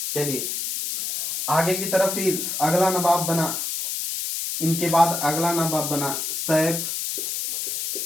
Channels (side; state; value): left; noise; hiss, 3 dB below the sound